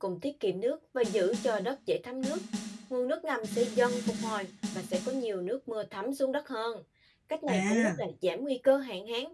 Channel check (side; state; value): both; identical; correlation 1.00